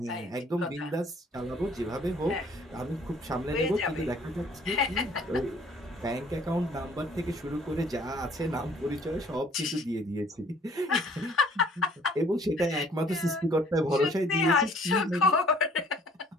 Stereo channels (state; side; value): normal; both; correlation 0.56